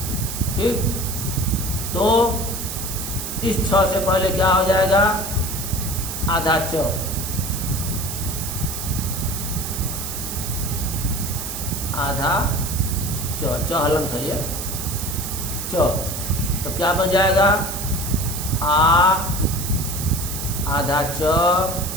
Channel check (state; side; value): noise; right; hiss, 6 dB below the sound